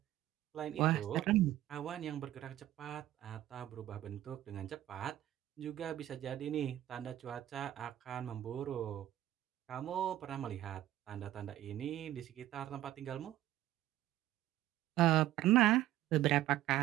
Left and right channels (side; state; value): left; quieter; 13.9 dB